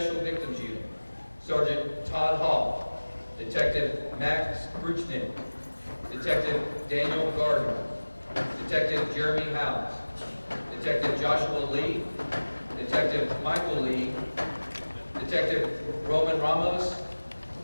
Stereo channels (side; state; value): both; inverted; correlation -1.00